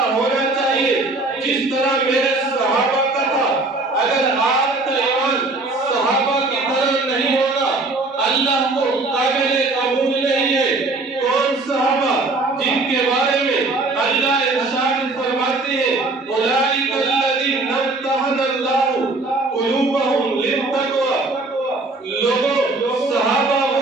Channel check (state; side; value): quieter; left; 3.2 dB